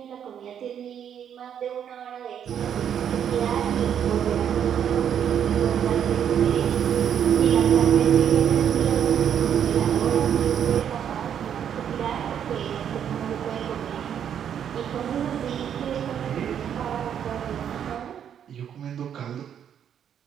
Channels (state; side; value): quieter; left; 8.9 dB